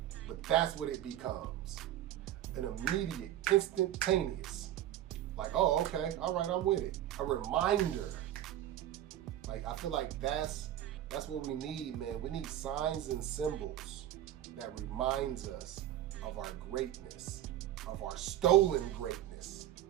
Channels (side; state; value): left; quieter; 12.3 dB